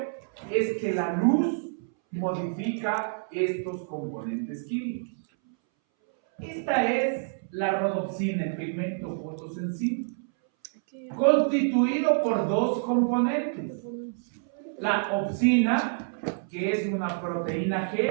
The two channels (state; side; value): silent; left; 60 dB below the other